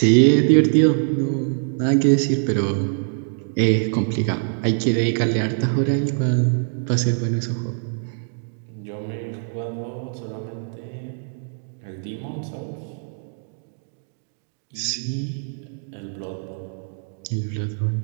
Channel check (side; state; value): left; silent; digital silence